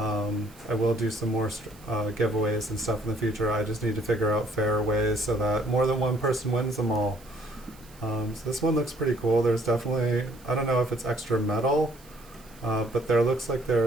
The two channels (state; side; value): noise; right; hiss, 25 dB below the sound